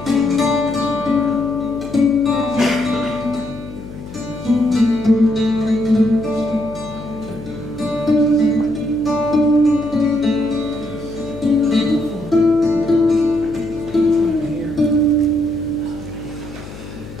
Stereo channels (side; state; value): left; noise; hum, 14 dB below the sound